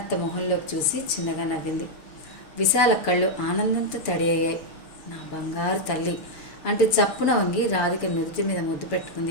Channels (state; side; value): late; right; 6.9 ms